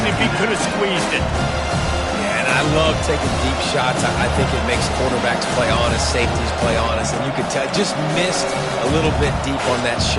if he could have squeezed it. Yeah, and and I love taking deep shots. I think it makes quarterbacks play honest, safeties play honest, and you can tell just missed a little bit deep on that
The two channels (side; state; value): both; identical; correlation 1.00